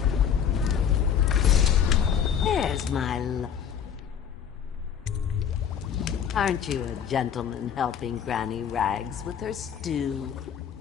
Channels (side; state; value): right; quieter; 8.1 dB